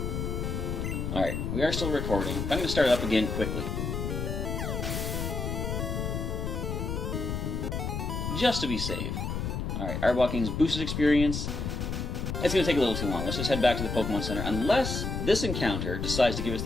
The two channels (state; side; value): noise; left; rumble, 3 dB below the sound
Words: Alright, we are still recording. I'm going to start it up again quickly. Just to be safe. Alright, Arbok gains boosted experience. It's going to take a little too long. Let's just head back to the Pokemon Center. Unless this encounter decides to give us